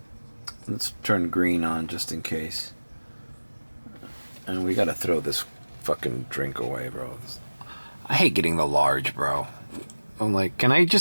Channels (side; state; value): both; inverted; correlation -1.00